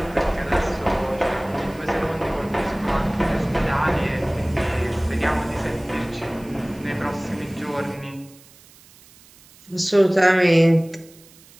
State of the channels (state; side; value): noise; right; hiss, 25 dB below the sound